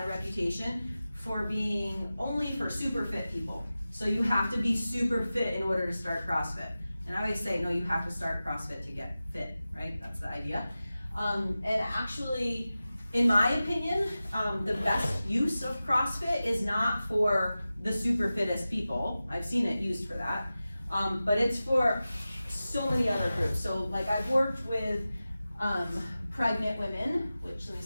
a reputation, for being only for super fit people. So you have to be super fit in order to start CrossFit. And I always say, no, you have to start CrossFit to get fit, right? That's the idea. And actually, in my opinion, the best use of CrossFit is not for the super fittest people. I've seen it used for that. But it's for so many other groups. So like I've worked with pregnant women, which, let me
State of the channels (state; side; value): inverted; both; correlation -0.95